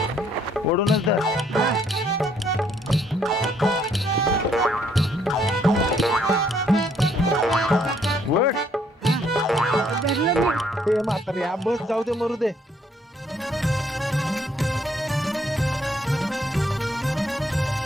ओढूनच धर. वड हे म्हातारे हा बस जाऊ दे मरू दे.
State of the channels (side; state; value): both; normal; correlation 0.67